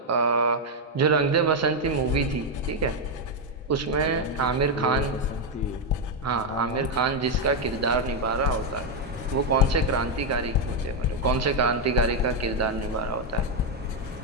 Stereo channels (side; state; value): both; normal; correlation 0.03